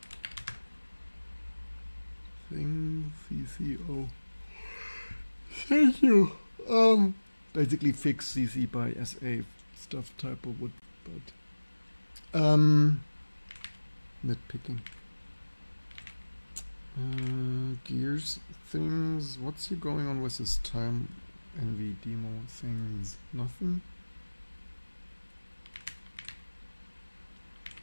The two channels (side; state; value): both; inverted; correlation -1.00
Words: thing CCO. Thank you. Basically fix CC by SA stuff typo would, but nitpicking. Gears things. What's here going on with this time NV demo things? Nothing.